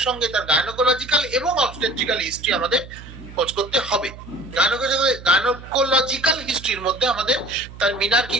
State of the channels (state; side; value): noise; right; hum, 16 dB below the sound